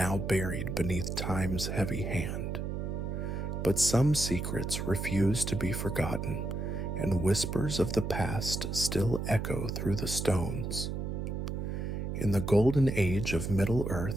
buried beneath time's heavy hand. But some secrets refuse to be forgotten, and whispers of the past still echo through the stones. In the golden age of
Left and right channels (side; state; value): right; noise; hum, 3 dB below the sound